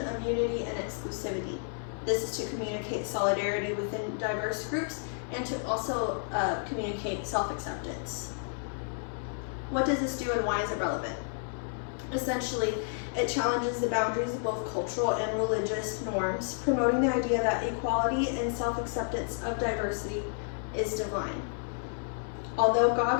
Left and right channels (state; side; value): silent; right; digital silence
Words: unity and exclusivity. This is to communicate solidarity within diverse groups and to also communicate self-acceptance. What does this do and why is it relevant? Essentially, it challenges the boundaries of both cultural and religious norms, promoting the idea that equality and self-acceptance of diversity is divine. Although